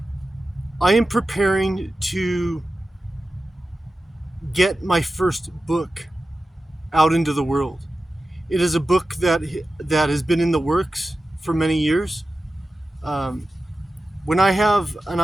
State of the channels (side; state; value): both; normal; correlation 0.94